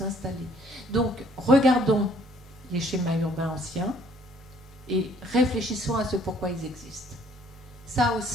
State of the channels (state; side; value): normal; both; correlation 0.61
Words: Donc, regardons les schémas urbains anciens et réfléchissons à ce pourquoi ils existent. Ça